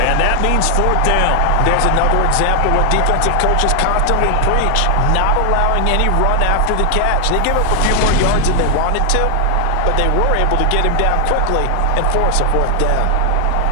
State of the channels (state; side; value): different; both; correlation 0.00